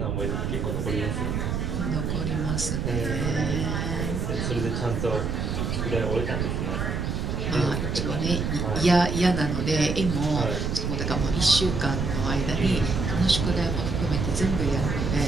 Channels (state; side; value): noise; right; rumble, 1 dB below the sound